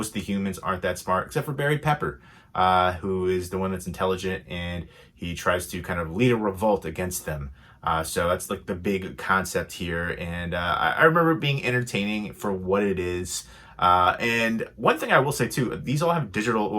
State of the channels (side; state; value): both; identical; correlation 1.00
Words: of the humans aren't that smart, except for Barry Pepper, who is the one that's intelligent, and he tries to kind of lead a revolt against them. So that's like the big concept here. And I remember it being entertaining for what it is. And one thing I will say too, these all have digital,